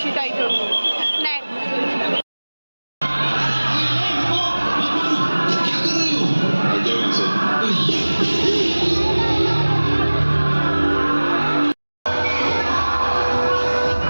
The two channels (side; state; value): both; inverted; correlation -1.00